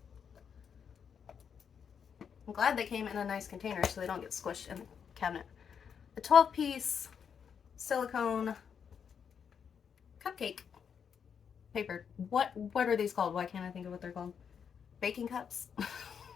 I'm glad they came in a nice container so they don't get squished in the cabinet. A 12-piece silicone cupcake paper. What are these called? Why can't I think of what they're called? Baking cups.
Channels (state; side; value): quieter; right; 7.2 dB